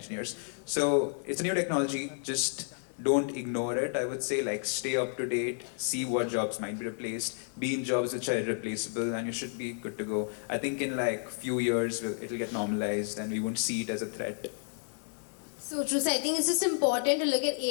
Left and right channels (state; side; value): silent; right; 57 dB below the other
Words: So it's a new technology. Just don't ignore it, I would say. Like stay up to date, see what jobs might be replaced, be in jobs which are irreplaceable, and you should be good to go. I think in like few years it'll get normalized and we won't see it as a threat. So true. So I think it's just important to look at